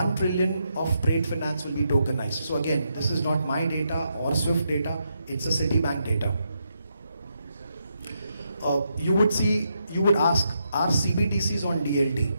trillion of trade finance will be tokenized. So again, this is not my data or Swift data, it's a Citibank data. You would ask, are CBDCs on DLT?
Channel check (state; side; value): inverted; both; correlation -0.81